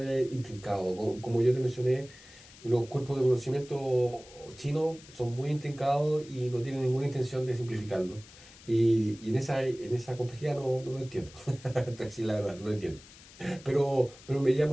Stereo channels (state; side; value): noise; left; hiss, 21 dB below the sound